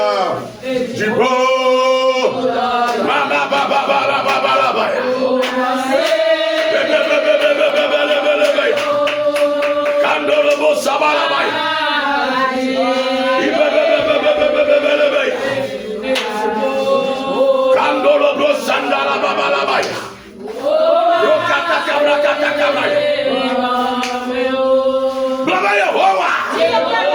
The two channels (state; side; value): identical; both; correlation 1.00